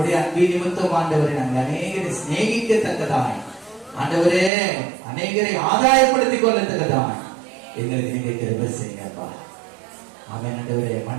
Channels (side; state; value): left; drops out; at 4.5 s